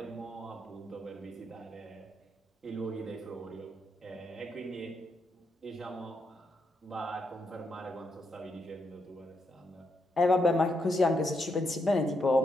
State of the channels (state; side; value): normal; both; correlation 0.80